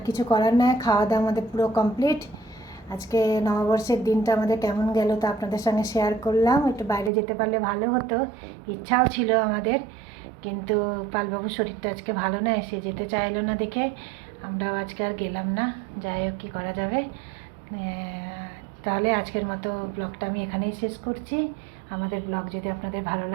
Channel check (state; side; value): drops out; left; at 7.1 s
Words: কিছু করার নয়, খাওয়া দাওয়া আমাদের পুরো কমপ্লিট। আজকে নববর্ষের দিনটা আমাদের কেমন গেল তা আপনাদের সঙ্গে শেয়ার করলাম। একটু বাইরে যেতে পারলে ভালো হতো, ইচ্ছাও ছিল আমাদের, কিন্তু পালবাবুর শরীরটা আজকে ভালো নয়, সে যেতে চাইলো না দেখে আমরাও আজকে আর গেলাম না। যাই হোক, কী করা যাবে। তাহলে আজকের মতো ব্লগটা আমি এখানেই শেষ করছি। আমাদের ব্লগ যদি আপনাদের ভালো